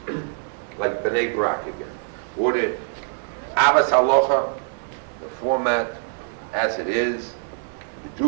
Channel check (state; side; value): silent; left; 63 dB below the other